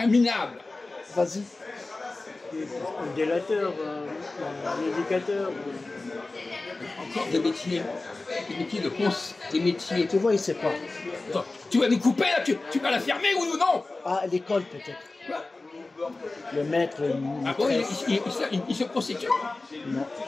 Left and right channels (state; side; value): quieter; right; 3.3 dB